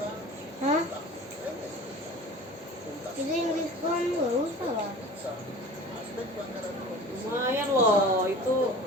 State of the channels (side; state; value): both; normal; correlation 0.40